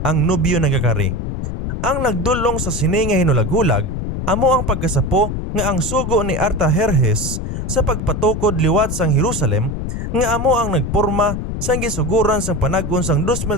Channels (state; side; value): noise; left; rumble, 4 dB below the sound